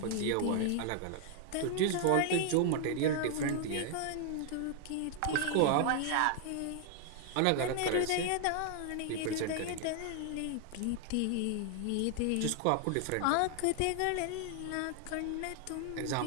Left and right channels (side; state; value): both; different; correlation 0.00